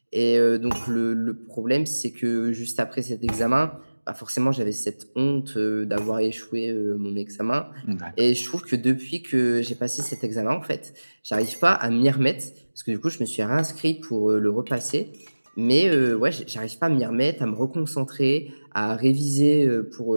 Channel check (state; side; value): inverted; both; correlation -1.00